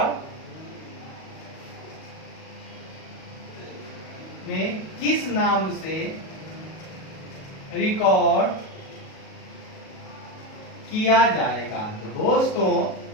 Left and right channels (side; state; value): right; late; 37 ms